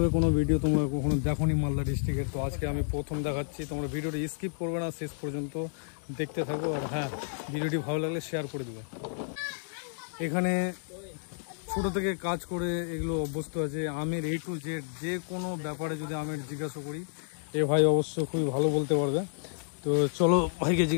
কোনো ভিডিও তোমরা কখনো দেখোনি মালদা ডিস্ট্রিক্টের, তো আজকে আমি প্রথম দেখাচ্ছি। তোমরা ভিডিওটি স্কিপ করবে না, শেষ পর্যন্ত দেখতে থাকো। আর হ্যাঁ, ভিডিওটি ভালো লাগলে শেয়ার করে দেবে। এখানে ছোট থেকে কাজ করে এগুলো অভ্যস্ত আছে। আমের A to Z যে কোনো ব্যাপারে যদি আমের জিজ্ঞাসা করি, এ ভাই অবশ্য খুবই ভালো বলতে পারবে। তো চলো ভাইকে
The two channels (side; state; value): right; silent; digital silence